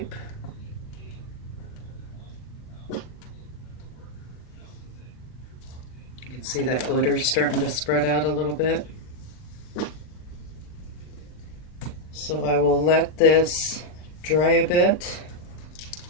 You can see that glitter starting to spread out a little bit. So I will let this dry a bit,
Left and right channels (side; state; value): right; late; 39 ms